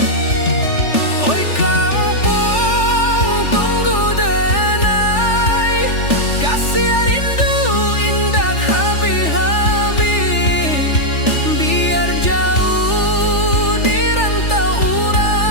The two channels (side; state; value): right; late; 3.4 ms